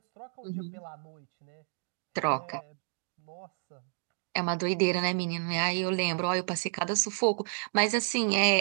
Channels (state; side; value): silent; left; digital silence